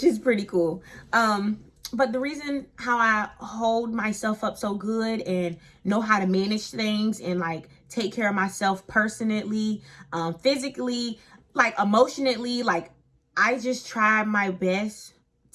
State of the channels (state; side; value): identical; both; correlation 1.00